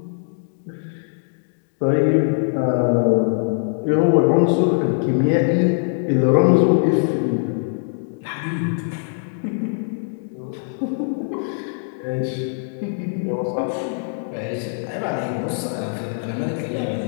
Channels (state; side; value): silent; right; digital silence